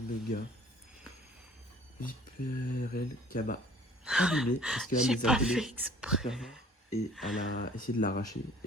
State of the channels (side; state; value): both; normal; correlation 0.52